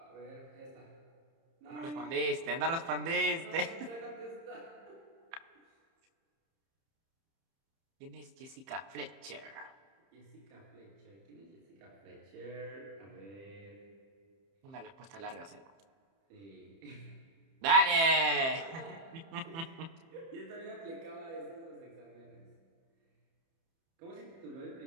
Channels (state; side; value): late; left; 30 ms